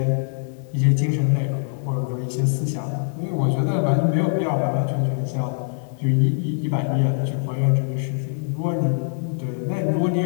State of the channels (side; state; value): right; silent; 63 dB below the other